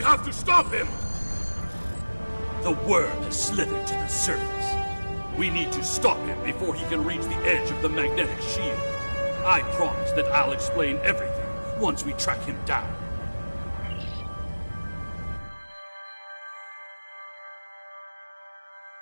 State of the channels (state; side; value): inverted; both; correlation -1.00